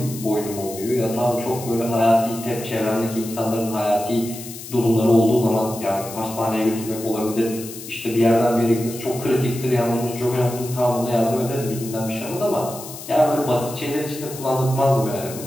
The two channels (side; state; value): left; noise; hiss, 13 dB below the sound